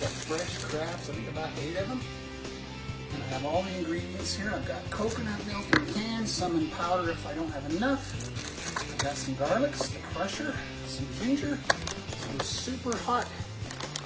of fresh crabs, I think about 8 of them. And I have all the ingredients here. I've got coconut milk in cans, some in powder if I don't have enough. I've got some garlics, the crusher, some ginger, some super hot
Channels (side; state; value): both; identical; correlation 1.00